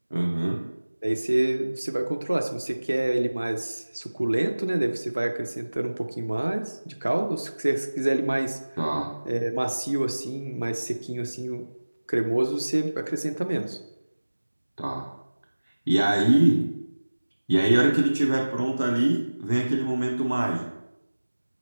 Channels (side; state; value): both; inverted; correlation -1.00